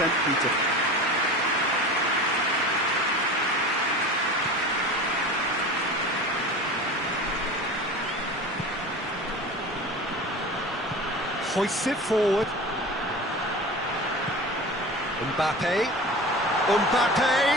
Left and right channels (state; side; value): normal; both; correlation 0.34